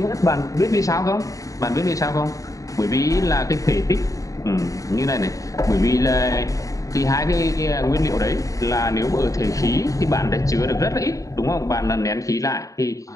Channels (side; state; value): right; late; 0.16 ms